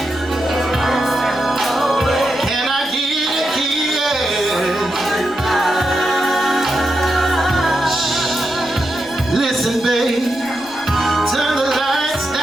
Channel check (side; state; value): left; noise; rumble, 27 dB below the sound